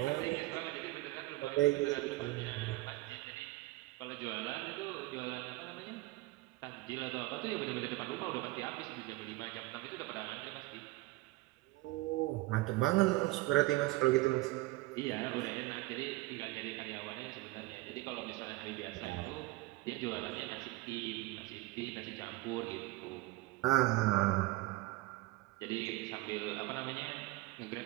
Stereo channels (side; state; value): left; quieter; 20.3 dB